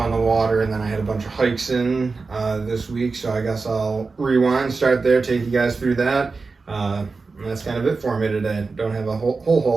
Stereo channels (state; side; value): quieter; left; 4.2 dB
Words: the water, and then I had a bunch of hikes in this week, so I guess I'll rewind, start there, take you guys through that. And that's kind of it for me today. Don't have a whole